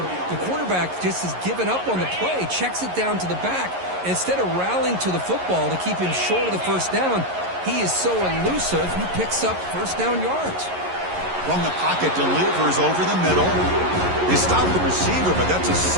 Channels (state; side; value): late; left; 11 ms